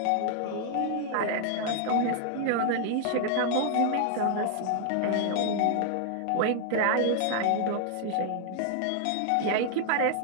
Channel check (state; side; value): different; both; correlation 0.00